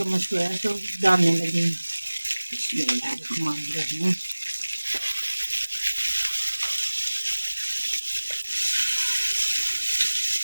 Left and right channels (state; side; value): inverted; both; correlation -1.00